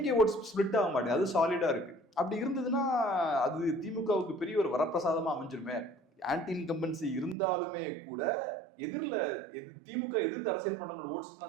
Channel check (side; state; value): left; drops out; at 7.4 s